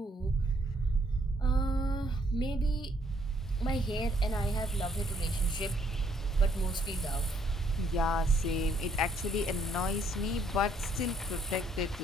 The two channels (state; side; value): normal; both; correlation 0.68